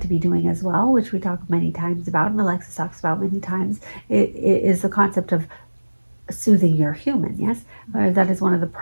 to be doing as well, which we talk many times about, and Alexis talks about many times, is the concept of soothing your human. Yes, that is one of the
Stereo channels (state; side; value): inverted; both; correlation -1.00